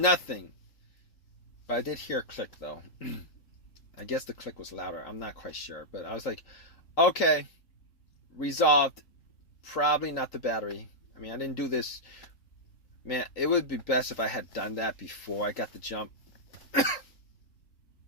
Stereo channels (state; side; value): late; right; 3.8 ms